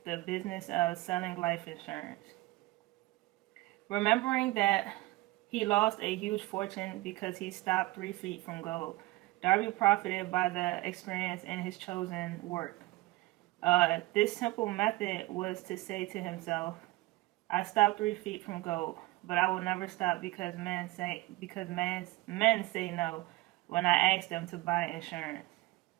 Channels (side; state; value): left; quieter; 20.0 dB